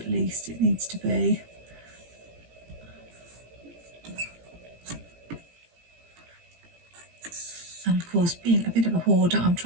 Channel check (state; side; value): late; left; 17 ms